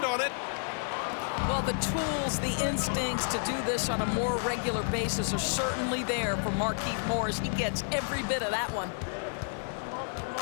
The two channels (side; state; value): right; silent; digital silence